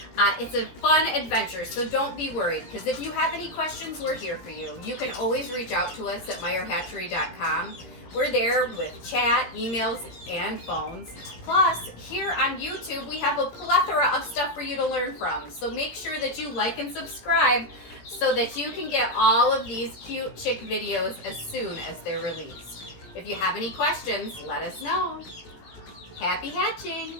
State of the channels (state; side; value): late; right; 17 ms